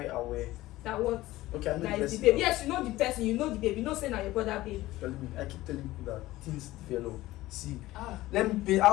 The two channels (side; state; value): right; quieter; 17.1 dB